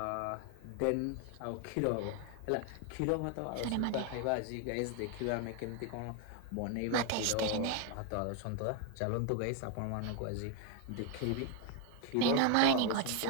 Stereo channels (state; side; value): different; both; correlation 0.01